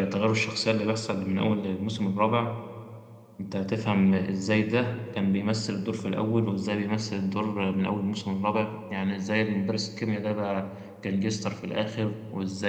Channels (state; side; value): identical; both; correlation 1.00